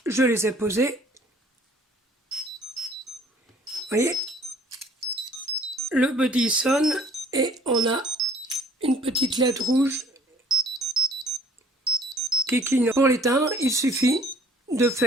je les ai posées, vous voyez, le Buddy sonne et on a une petite lettre rouge qui clignote. Pour l'éteindre, il suffit de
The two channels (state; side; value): normal; both; correlation 0.55